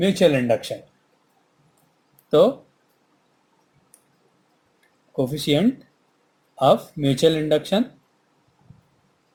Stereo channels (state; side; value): identical; both; correlation 1.00